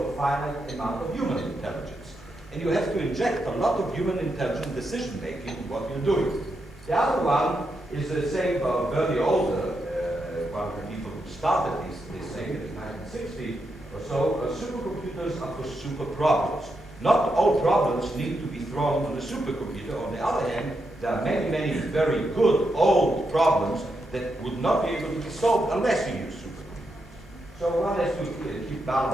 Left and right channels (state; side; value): normal; both; correlation 0.83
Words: a finite amount of human intelligence. And you have to inject a lot of human intelligence decision-making in what you're doing. The other one is the same Bernie Older, one of the people who started this thing in 1960, so supercomputers are for super problems. Not all problems need to be thrown on the supercomputer. On the other hand, there are many, many very good old problems that would not be able to be solved unless you use supercomputers. So one has to keep